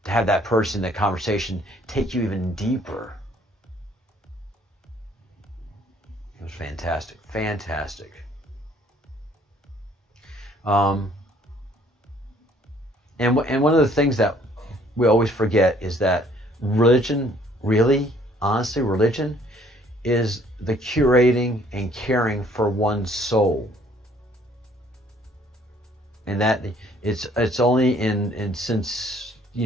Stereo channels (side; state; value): both; normal; correlation 0.60